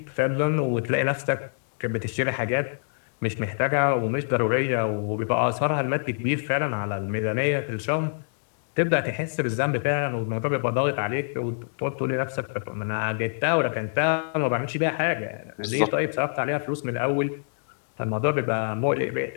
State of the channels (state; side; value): silent; right; digital silence